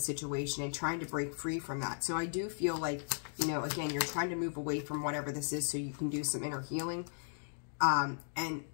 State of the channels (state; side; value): silent; right; digital silence